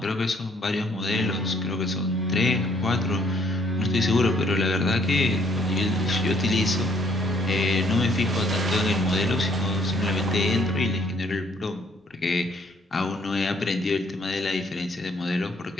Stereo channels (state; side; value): normal; both; correlation 0.64